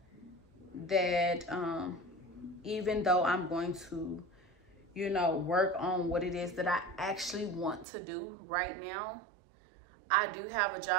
that even though I'm going to, work on what it is that I actually want to do right now, I do have a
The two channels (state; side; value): drops out; left; at 7.9 s